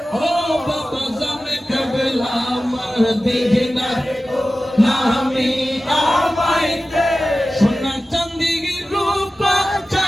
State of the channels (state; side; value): normal; both; correlation 0.95